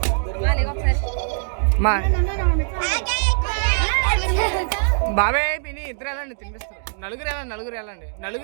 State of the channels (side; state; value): left; silent; digital silence